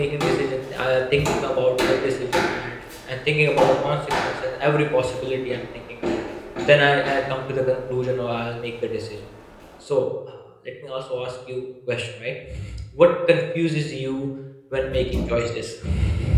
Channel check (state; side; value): identical; both; correlation 1.00